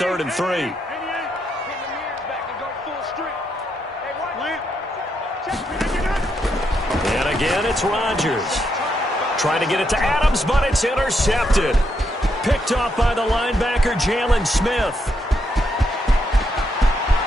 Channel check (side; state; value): both; normal; correlation 0.79